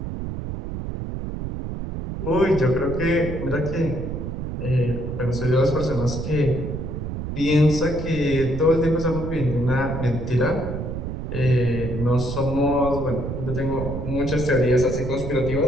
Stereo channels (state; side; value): noise; right; rumble, 5 dB below the sound